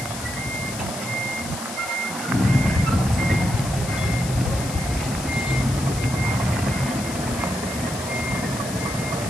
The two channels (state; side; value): noise; left; hiss, 10 dB below the sound